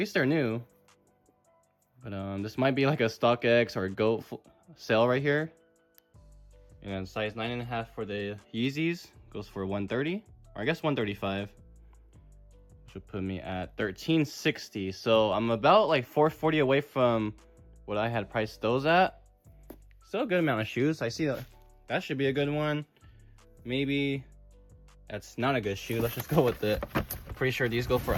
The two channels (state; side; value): identical; both; correlation 1.00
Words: they're new. But this might be like a StockX or a GOAT sale right here. And size 9.5 for the Yeezys goes for 130, or I guess 135, which would put me at 1360. So I'm about like 440 away from what I had priced those at. Still a good amount of shoes. I see that should be a good one. Maybe that's not a good shoe. Let's just go with it. Pretty sure these go for